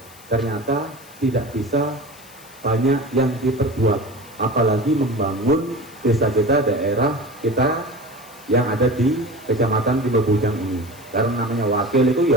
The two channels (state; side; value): noise; left; hiss, 22 dB below the sound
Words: Ternyata tidak bisa banyak yang diperbuat, apalagi membangun desa kita, daerah kita yang ada di Kecamatan Rimbu Bujang ini. Karena namanya wakil itu